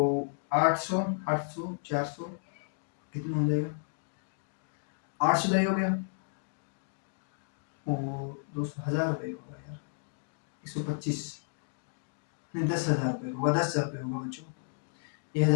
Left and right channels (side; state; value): right; silent; digital silence